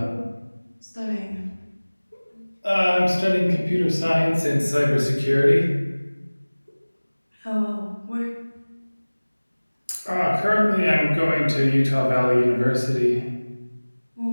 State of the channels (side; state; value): both; inverted; correlation -1.00